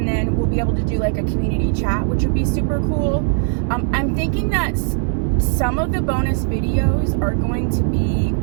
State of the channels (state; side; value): silent; left; 58 dB below the other